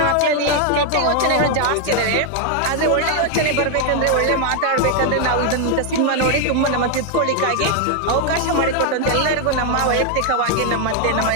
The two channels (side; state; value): both; different; correlation 0.01